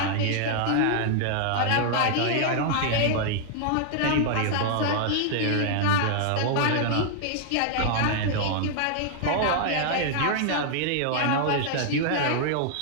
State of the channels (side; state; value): both; different; correlation -0.01